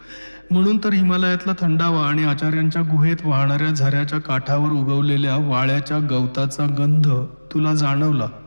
म्हणून तर हिमालयातला थंडावा आणि आचार्यांच्या गुहेत वाहणाऱ्या झऱ्याच्या काठावर उगवलेल्या वाळ्याच्या गवताचा गंध तुला जाणवला.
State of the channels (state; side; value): inverted; both; correlation -1.00